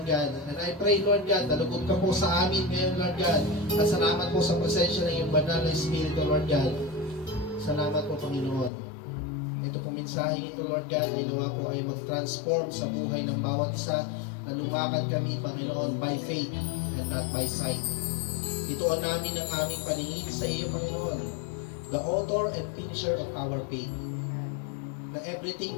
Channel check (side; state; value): right; drops out; at 8.7 s